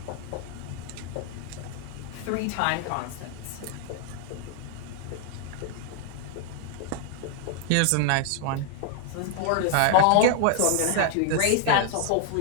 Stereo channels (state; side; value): different; both; correlation 0.00